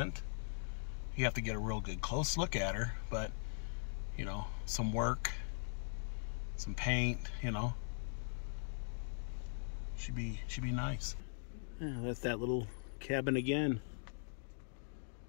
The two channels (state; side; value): silent; right; digital silence